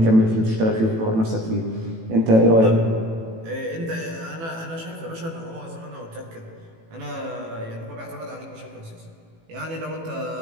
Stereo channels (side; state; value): left; late; 18 ms